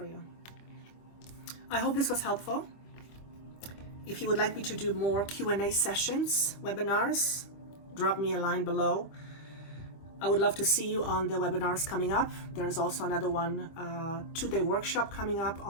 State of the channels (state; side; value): late; right; 25 ms